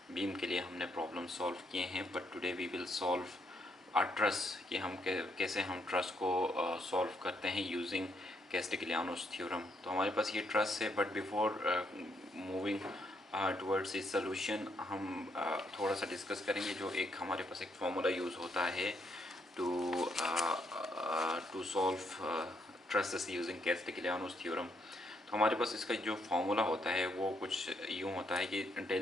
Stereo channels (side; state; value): both; normal; correlation 0.75